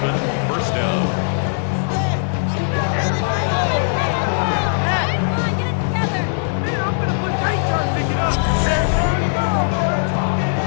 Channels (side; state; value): right; silent; digital silence